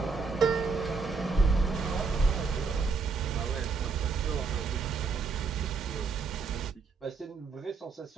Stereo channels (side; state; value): left; quieter; 4.7 dB